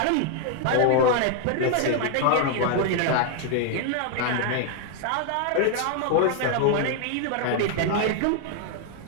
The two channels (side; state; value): both; different; correlation 0.00